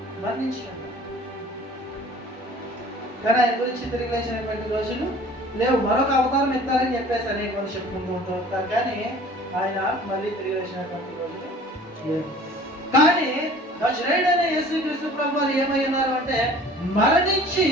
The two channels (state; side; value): normal; both; correlation 0.48